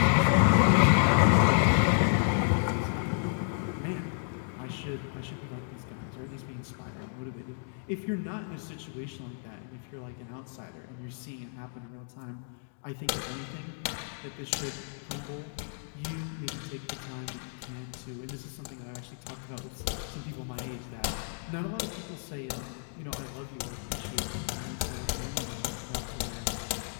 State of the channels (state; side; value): silent; right; digital silence